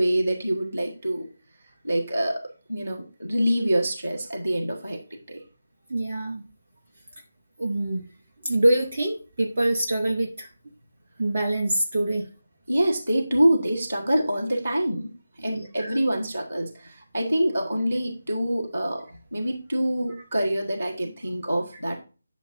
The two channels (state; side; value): inverted; both; correlation -0.95